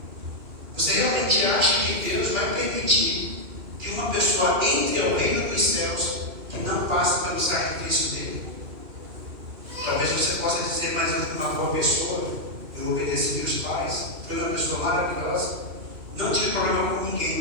Você realmente acha que Deus vai permitir que uma pessoa entre ao reino dos céus que não passe pelo sacrifício dele? Talvez você possa dizer: mas eu fui uma boa pessoa, eu obedeci meus pais, fui uma pessoa maravilhosa, não tive problema com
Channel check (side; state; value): left; late; 2.5 ms